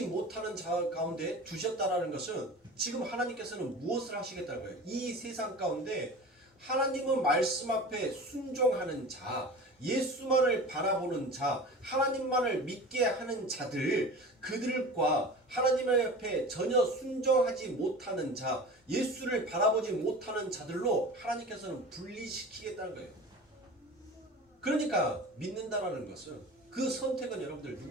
못하는 자 가운데 두셨다라는 것은 지금 하나님께서는 무엇을 하시겠다는 거예요? 이 세상 가운데 하나님의 말씀 앞에 순종하는 자, 예수만을 바라보는 자, 하나님만을 믿게 하는 자들, 그들과 하나님 앞에 전혀 순종하지 못하는 자, 예수를 바라보지 못하는 자들로 하나님께서는 분리시키겠다는 거예요. 그러니까 믿는다라는 것은 그 선택은 여러분들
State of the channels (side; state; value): both; normal; correlation 0.36